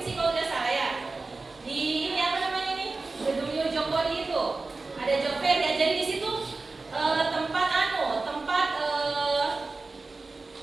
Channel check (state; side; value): quieter; left; 3.7 dB